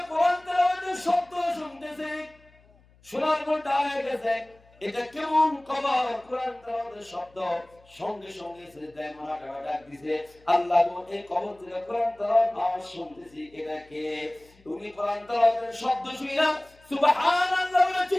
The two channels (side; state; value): left; noise; hum, 29 dB below the sound